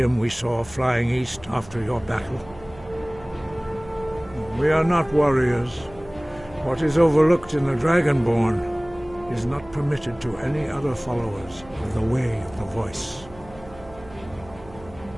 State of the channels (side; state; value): right; noise; hum, 20 dB below the sound